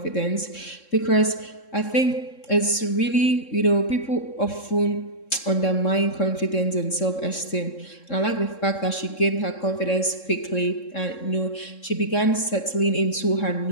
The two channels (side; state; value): right; late; 3.7 ms